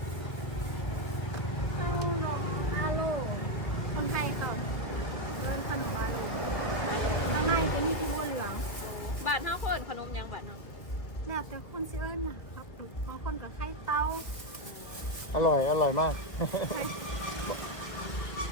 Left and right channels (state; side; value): late; right; 1.6 ms